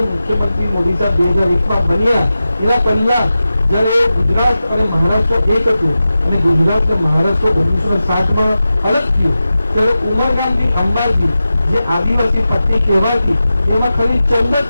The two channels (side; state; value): both; inverted; correlation -0.93